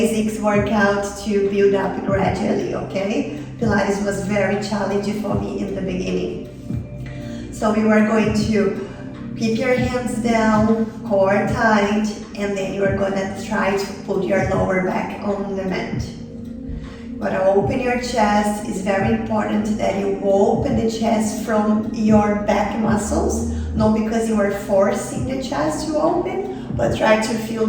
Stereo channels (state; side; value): identical; both; correlation 1.00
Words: workout to build up gradually, okay? Pilates was very challenging for me in the beginning. So we were going to keep your hands down, core tight, and then you are gonna try to put your lower back on the mat. You gotta open your chest. It's very important that you open the chest from your back muscles, not because you are forcing the chest to open, but try to feel